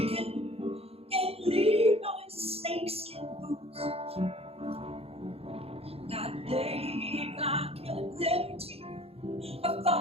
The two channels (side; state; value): left; late; 0.29 ms